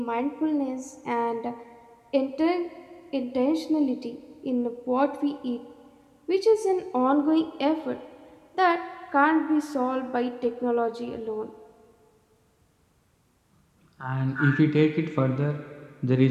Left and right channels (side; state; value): both; identical; correlation 1.00